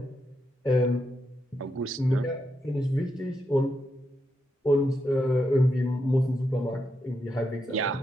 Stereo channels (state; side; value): normal; both; correlation 0.83